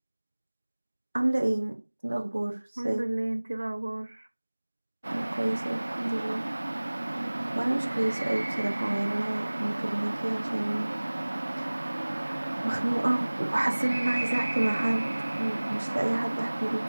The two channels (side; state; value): both; inverted; correlation -1.00